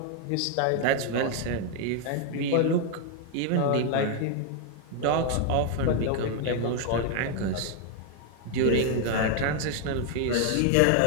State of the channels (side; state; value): both; different; correlation 0.00